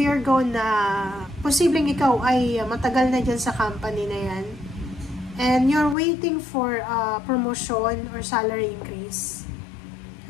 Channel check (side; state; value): right; drops out; at 6.0 s